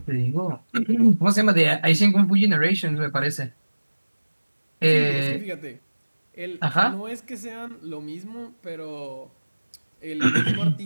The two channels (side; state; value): both; inverted; correlation -1.00